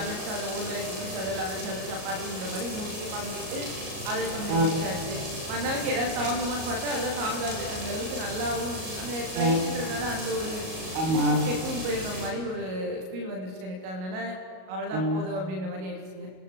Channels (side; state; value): left; late; 38 ms